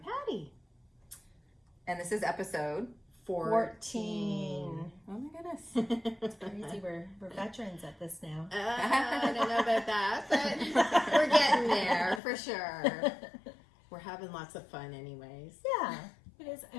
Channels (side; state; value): right; drops out; at 12.2 s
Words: And this is episode 14. Oh my goodness. It's crazy. We're veterans at this now. I don't know about that, but we're getting there for sure. We're having lots of fun anyways. Yeah,